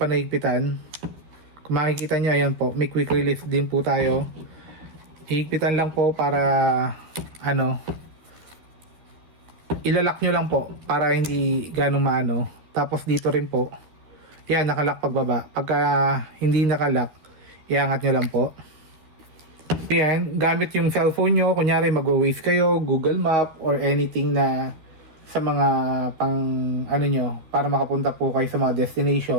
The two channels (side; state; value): left; late; 12 ms